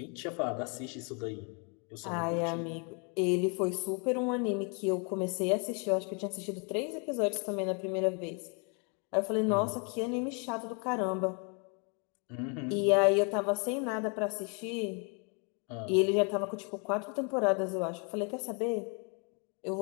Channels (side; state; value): right; quieter; 36.0 dB